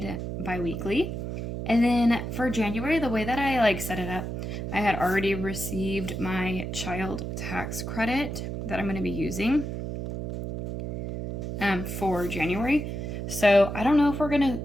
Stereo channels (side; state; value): right; noise; hum, 5 dB below the sound